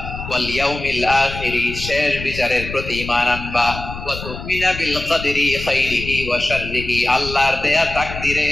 ওয়াল ইয়াউমিল আখিরি, শেষ বিচারের প্রতি ঈমান আনবা, ওয়া তুমিনা বিল কদরি খাইরিহি ওয়া শাররিহি, আল্লাহর দেয়া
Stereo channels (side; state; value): left; noise; rumble, 9 dB below the sound